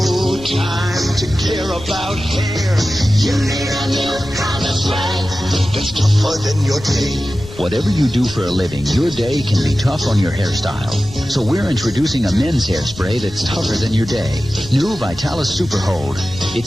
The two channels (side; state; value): left; noise; rumble, 16 dB below the sound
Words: time to care about hair. You need a new kind of sweat that's tougher than your day. Whatever you do for a living, your day can be tough on your hairstyle. So we're introducing a men's hairspray that's tougher than your day. New Vitalis Super Hold.